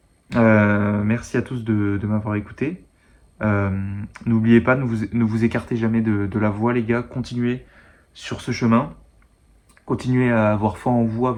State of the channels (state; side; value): identical; both; correlation 1.00